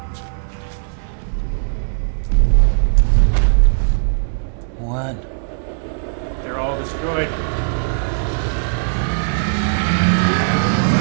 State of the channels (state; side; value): silent; left; 64 dB below the other